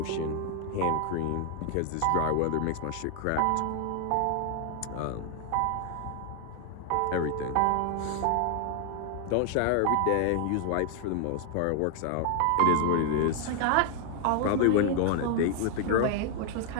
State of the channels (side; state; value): both; different; correlation 0.00